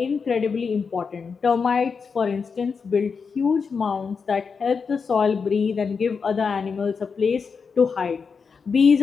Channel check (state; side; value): quieter; right; 5.5 dB